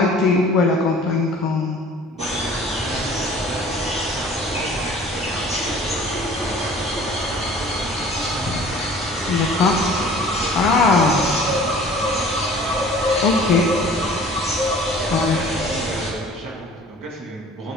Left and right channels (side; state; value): both; normal; correlation 0.47